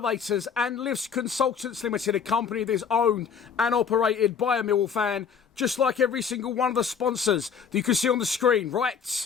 and Lifts Consultants Limited, a company that is owned and operated by a Millwall fan, just like every single one of the sponsors that you can see on the screen,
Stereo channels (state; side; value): quieter; right; 6.7 dB